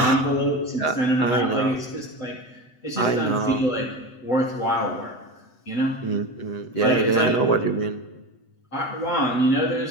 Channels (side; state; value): right; late; 7.9 ms